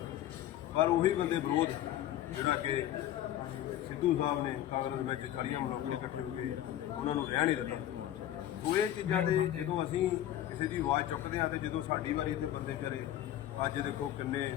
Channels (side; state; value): right; quieter; 12.3 dB